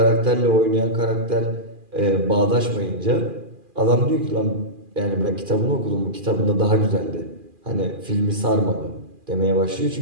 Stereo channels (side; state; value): left; late; 2.4 ms